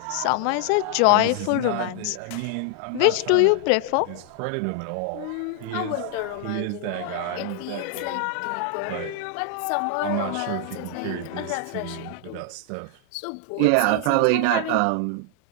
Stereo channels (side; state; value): both; different; correlation 0.00